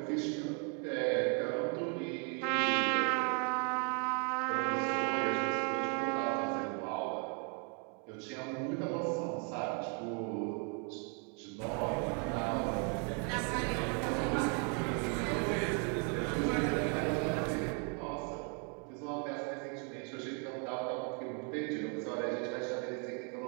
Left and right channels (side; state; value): left; quieter; 38.6 dB